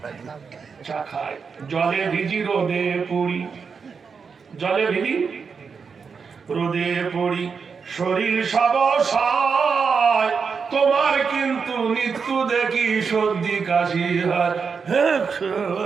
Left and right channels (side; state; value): left; quieter; 5.7 dB